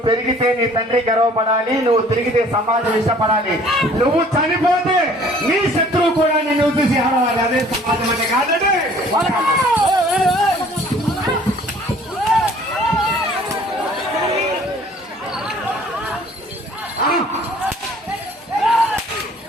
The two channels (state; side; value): normal; both; correlation 0.54